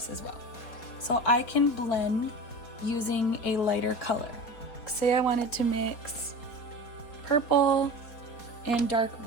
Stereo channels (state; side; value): late; right; 4.1 ms